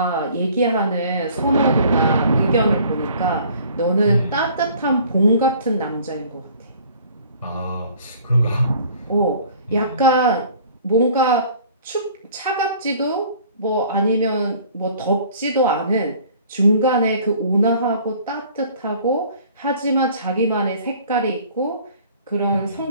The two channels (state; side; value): inverted; both; correlation -0.52